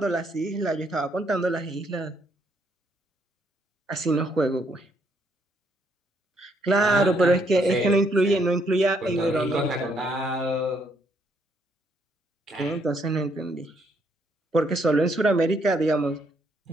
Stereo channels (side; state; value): both; normal; correlation 0.72